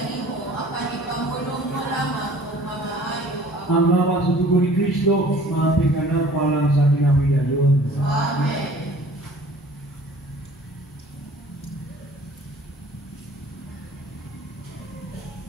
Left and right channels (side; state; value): both; normal; correlation 0.50